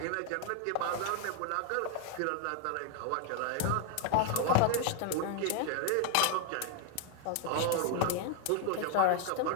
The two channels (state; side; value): different; both; correlation 0.01